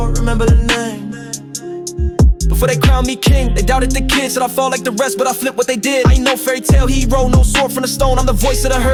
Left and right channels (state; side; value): identical; both; correlation 1.00